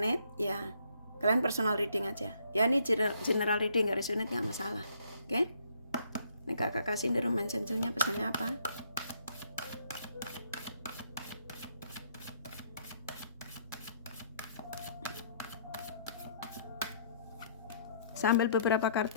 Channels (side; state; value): both; inverted; correlation -0.66